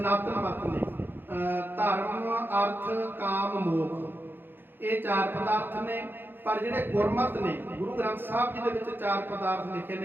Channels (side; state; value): left; late; 0.099 ms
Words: ਮਤ ਨੇ, ਧਰਮ ਅਰਥ ਕਾਮ ਮੋਖ, ਇਹ ਚਾਰ ਪਦਾਰਥ ਨੇ। ਪਰ ਜਿਹੜੇ ਗੁਰਮਤ ਨੇ, ਗੁਰੂ ਗ੍ਰੰਥ ਸਾਹਿਬ ਜੀ ਦੇ ਵਿੱਚ ਚਾਰ ਪਦਾਰਥ ਲਿਖੇ